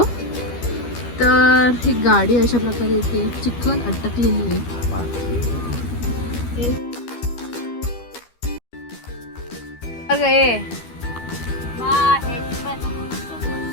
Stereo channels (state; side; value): late; right; 12 ms